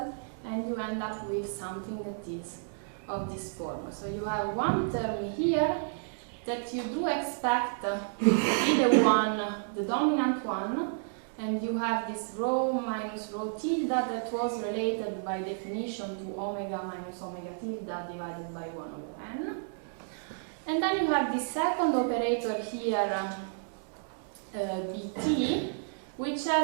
and you end up with something that is of this form. So you have one term here that you do expect to be the dominant one, and you have this rho minus rho tilde that was related by definition to omega minus omega tilde divided by 1 over n. And then you have the second operator here, bt, which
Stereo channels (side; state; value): left; silent; digital silence